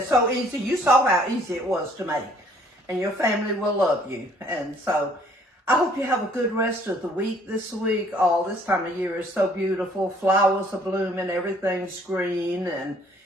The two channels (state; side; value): normal; both; correlation 0.60